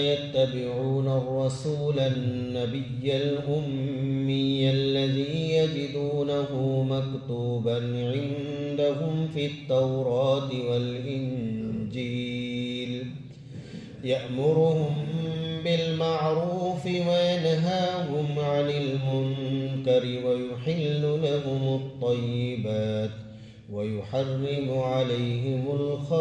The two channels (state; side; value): identical; both; correlation 1.00